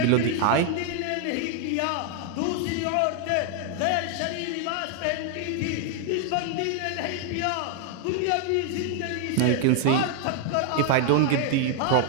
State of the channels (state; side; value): different; both; correlation 0.00